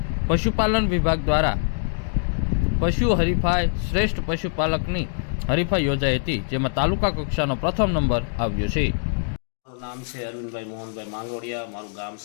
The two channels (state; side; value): silent; right; digital silence